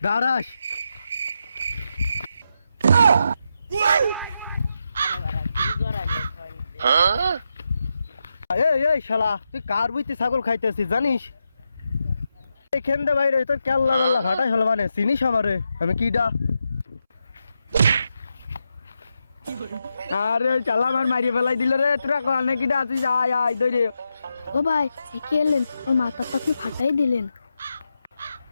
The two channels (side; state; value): both; inverted; correlation -0.86